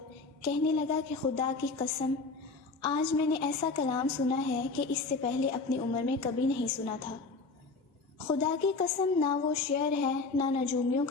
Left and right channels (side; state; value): right; quieter; 4.0 dB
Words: کہنے لگا کہ خدا کی قسم، آج میں نے ایسا کلام سنا ہے کہ اس سے پہلے اپنی عمر میں کبھی نہیں سنا تھا۔ خدا کی قسم، نہ وہ شعر ہے، نہ نجومیوں